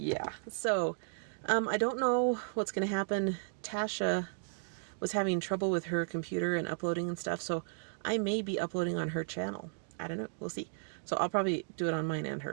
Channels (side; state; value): left; silent; digital silence